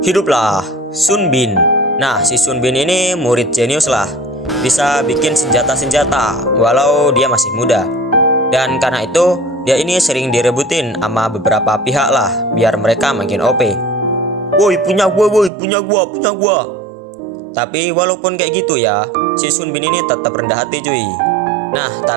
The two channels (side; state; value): left; drops out; at 15.5 s